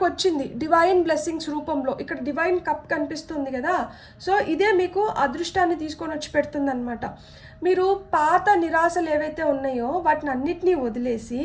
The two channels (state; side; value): identical; both; correlation 1.00